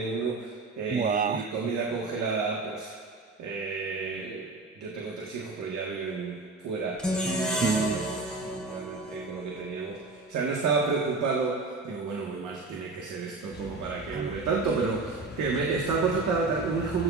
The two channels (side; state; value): left; quieter; 3.7 dB